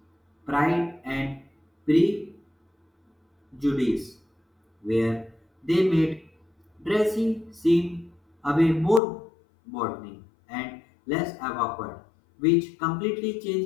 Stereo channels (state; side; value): drops out; right; at 9.0 s